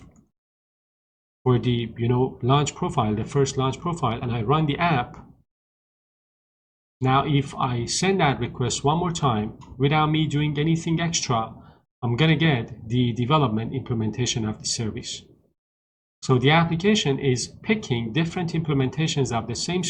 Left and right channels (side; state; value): both; identical; correlation 1.00